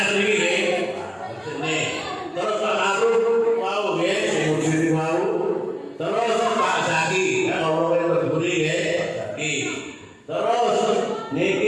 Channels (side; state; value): both; identical; correlation 1.00